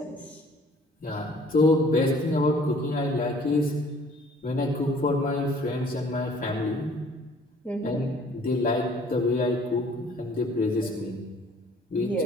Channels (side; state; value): both; normal; correlation 0.55